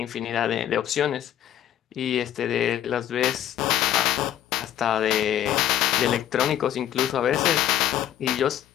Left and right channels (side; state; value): right; quieter; 11.4 dB